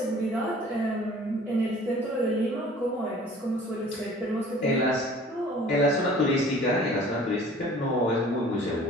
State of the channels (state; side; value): normal; both; correlation 0.49